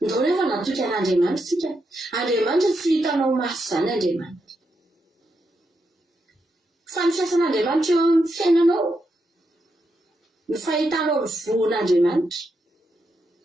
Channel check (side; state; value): both; normal; correlation 0.83